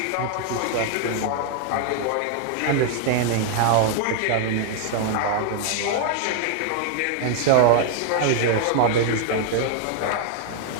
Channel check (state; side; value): different; both; correlation 0.00